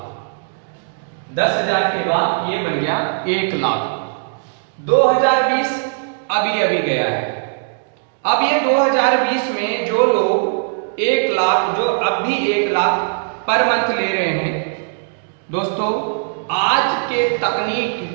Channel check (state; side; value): silent; left; digital silence